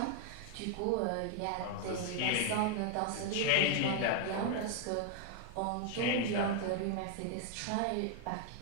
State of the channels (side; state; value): both; different; correlation 0.00